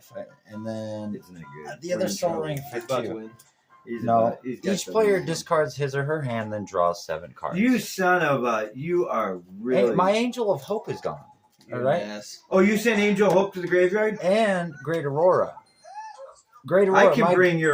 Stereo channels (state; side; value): identical; both; correlation 1.00